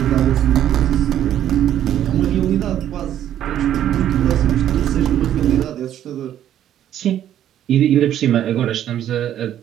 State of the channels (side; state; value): left; quieter; 11.1 dB